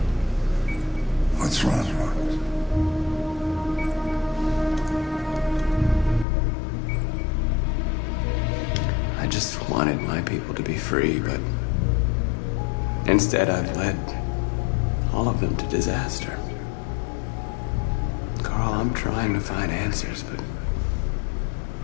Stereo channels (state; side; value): drops out; right; at 6.2 s